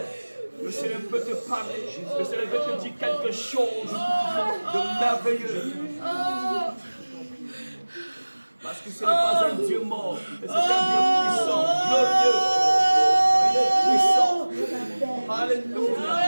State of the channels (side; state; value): both; inverted; correlation -1.00